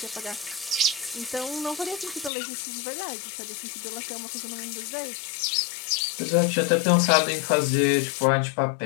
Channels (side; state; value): right; drops out; at 2.3 s